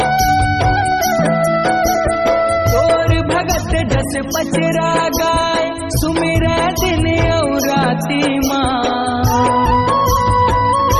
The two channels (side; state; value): both; identical; correlation 1.00